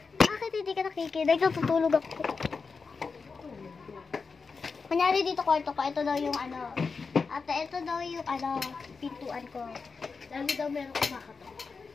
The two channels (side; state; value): right; quieter; 4.8 dB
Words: Bakit hindi ka nakikinig? Natutulog ako. Kunyari dito kwarto ko, ito daw yung ano. Ate, ito daw yung ano, pintuan ko. Lagi daw meron kumakatok.